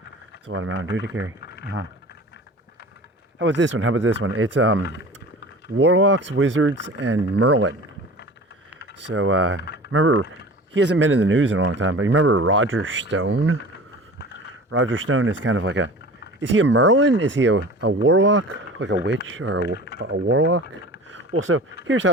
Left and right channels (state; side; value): normal; both; correlation 0.39